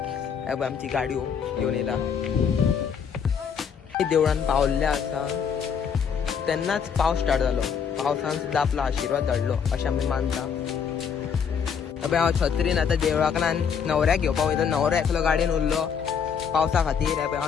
आमची गाडयो घेवन येता देवळान पावल्ले आसा तेन्नाच पावस स्टार्ट जालो. पावसान सुद्धा आपलो आशीर्वाद धाडलो अशें आमी मानता. हांव छत्रीन आतां देवळाकडल्यान न्हवऱ्याक घेवपाक वयता. न्हवरो एकलो गाडयेन उरलो पावसा खातीर.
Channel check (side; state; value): right; quieter; 7.0 dB